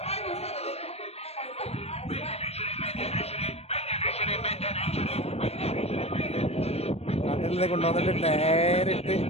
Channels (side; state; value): right; late; 0.30 ms